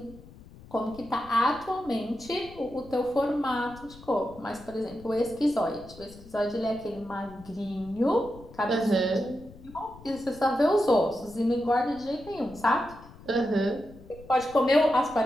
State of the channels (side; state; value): left; noise; rumble, 20 dB below the sound